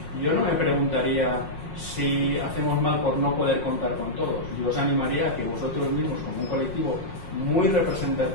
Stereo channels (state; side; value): late; right; 5.5 ms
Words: yo no me preguntaría si hacemos mal por no poder contar con todos. Yo os animaría a que vosotros mismos, como un colectivo muy